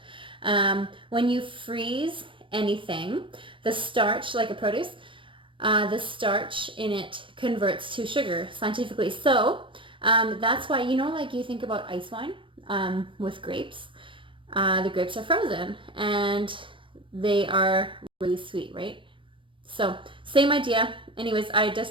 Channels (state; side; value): late; left; 0.25 ms